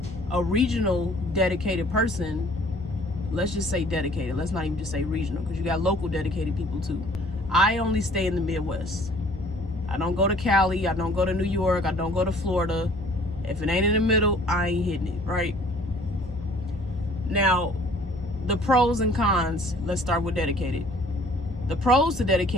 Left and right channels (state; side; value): normal; both; correlation 0.54